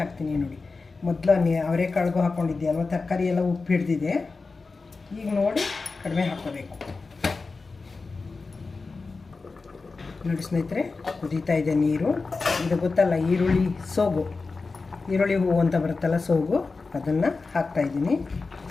ಹಾಕ್ತೀನಿ. ನೋಡಿ ಮೊದಲು ಅವರೆಕಾಳಿಗೂ ಹಾಕ್ಕೊಂಡಿದ್ದೆ ಅಲ್ವ, ತರಕಾರಿ ಎಲ್ಲ ಉಪ್ಪು ಹಿಡ್ದಿದೆ. ಈಗ ನೋಡಿ ಕಡಿಮೆ ಹಾಕ್ಕೋಬೇಕು. ನೋಡಿ ಸ್ನೇಹಿತರೆ, ಕುದೀತಾ ಇದೆ ನೀರು. ಇದು ಗೊತ್ತಲ್ಲ, ಈರುಳ್ಳಿ ಹೂವು ಅಂತ ಬರುತ್ತಲ್ಲ, ಸೋಗು, ಅದನ್ನು ಹಾಕ್ತಾಯಿದ್ದೀನಿ.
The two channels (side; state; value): right; quieter; 4.1 dB